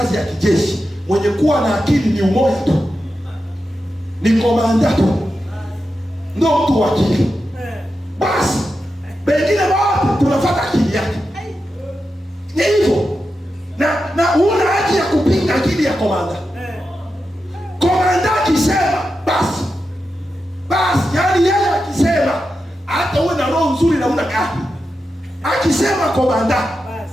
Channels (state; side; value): normal; both; correlation 0.89